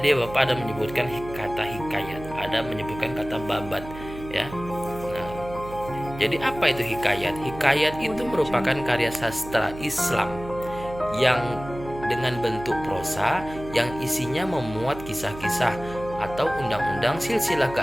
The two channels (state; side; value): noise; right; hum, 13 dB below the sound